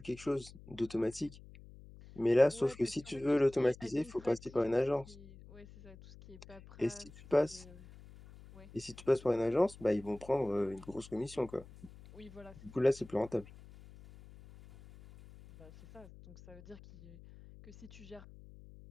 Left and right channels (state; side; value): noise; left; hum, 19 dB below the sound